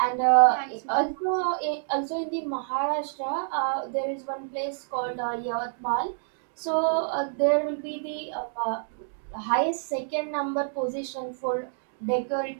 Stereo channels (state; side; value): silent; left; digital silence